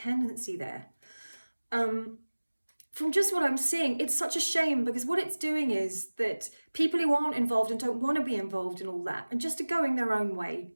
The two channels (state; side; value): inverted; both; correlation -1.00